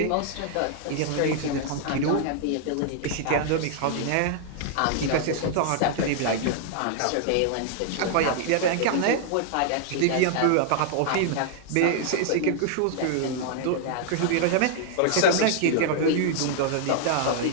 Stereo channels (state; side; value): different; both; correlation 0.00